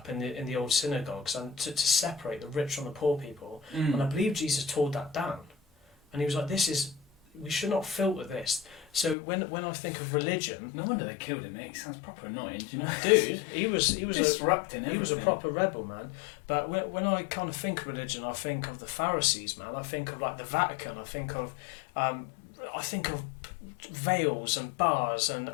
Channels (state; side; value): drops out; right; at 9.2 s